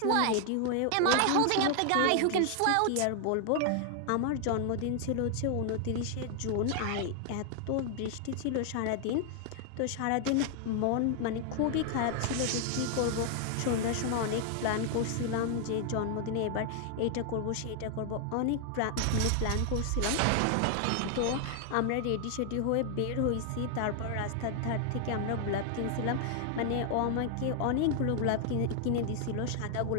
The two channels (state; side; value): different; both; correlation 0.00